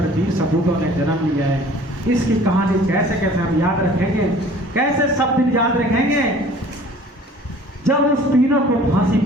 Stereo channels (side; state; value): both; normal; correlation 0.49